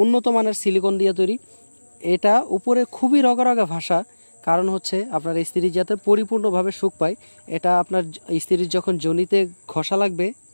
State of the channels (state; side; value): inverted; both; correlation -1.00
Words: উন্নত মানের সিলিকন দিয়ে তৈরি। এটা উপরে খুবই রগা রগা ভাষা, কারণ হচ্ছে আপনার স্ত্রী যাতে পরিপূর্ণভাবে সুখ পায়। এটা আপনার স্ত্রীর যখন যোনিতে ঘষা লাগবে